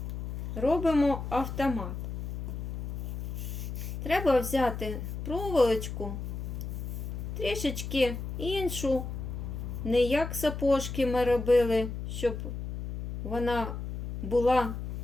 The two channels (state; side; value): noise; left; hum, 6 dB below the sound